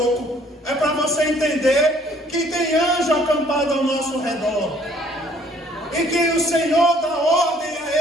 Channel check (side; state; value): both; normal; correlation 0.60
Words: É para você entender que tem anjo acampado ao nosso redor. E que o Senhor dá ordem